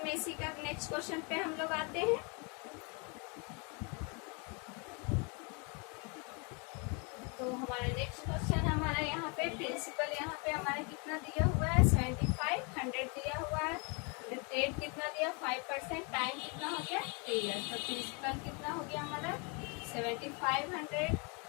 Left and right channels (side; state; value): right; quieter; 33.5 dB